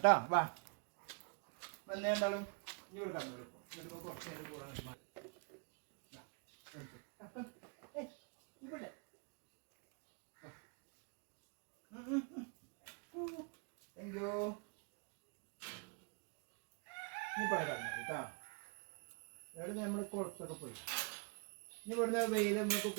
വാ വന്ന രണ്ടാളും ഇനി കൊടുക്കാൻ പറ്റും. ഇവിടെ അയ്യോ ഇനി പറയാം കേട്ടോ. ഇവിടെ നമ്മൾ കുളത്തൊക്കെ പോയി. ഇനി ഇവിടുന്ന് വെയിൽ നമുക്ക്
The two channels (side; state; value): left; quieter; 36.0 dB